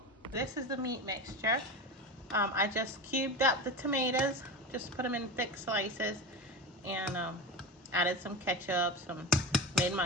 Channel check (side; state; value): both; normal; correlation 0.24